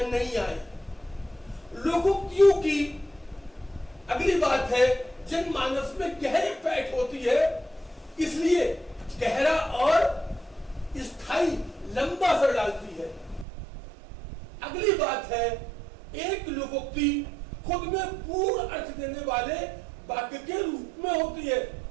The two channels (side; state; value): left; drops out; at 13.5 s